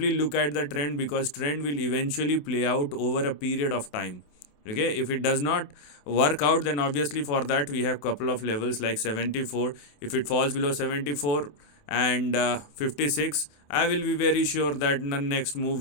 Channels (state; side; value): late; right; 27 ms